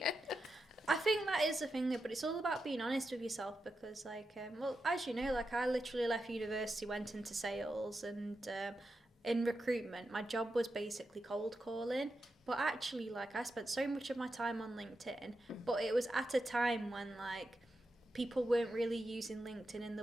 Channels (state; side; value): normal; both; correlation 0.88